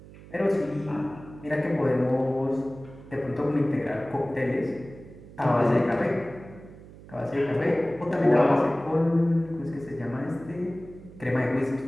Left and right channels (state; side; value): noise; right; hum, 19 dB below the sound